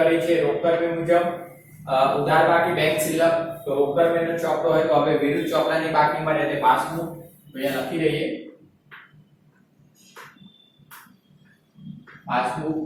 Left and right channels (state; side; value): identical; both; correlation 1.00